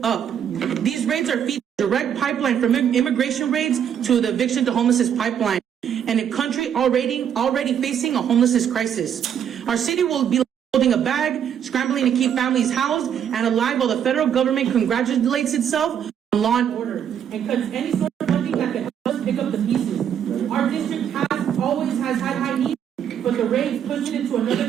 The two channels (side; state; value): left; quieter; 8.9 dB